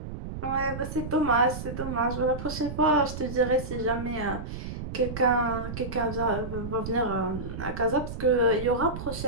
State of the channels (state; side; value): noise; right; rumble, 8 dB below the sound